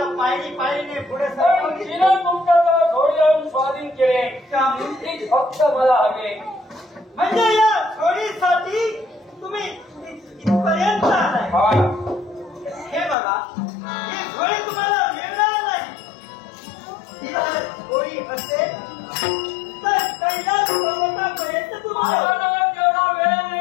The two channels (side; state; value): right; drops out; at 13.2 s